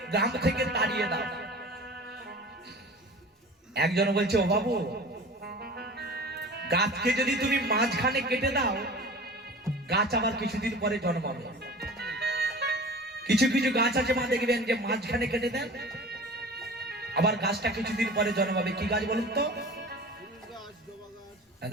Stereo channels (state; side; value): normal; both; correlation 0.39